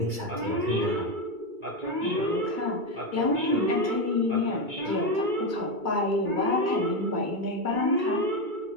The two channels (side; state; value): left; late; 2.3 ms